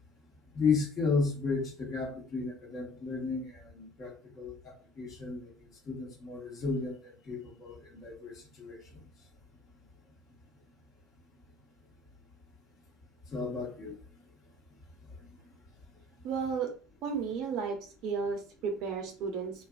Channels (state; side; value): normal; both; correlation 0.53